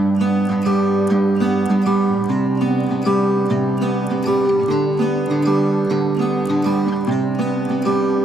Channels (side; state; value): both; normal; correlation 0.78